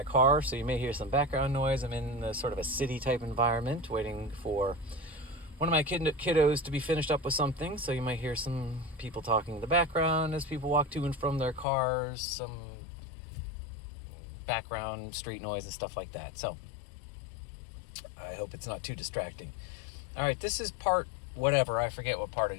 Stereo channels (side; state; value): right; drops out; at 11.7 s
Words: car, so you may hear some background noise. I'm in the sort of a city-type environment, waiting for one of my kiddos to be finished up with something, so you might hear some people talking in the background as people walk to and from their cars, some background street noise and stuff like that. So I hope it's not too distracting. All right, this is part whatever. I forget what part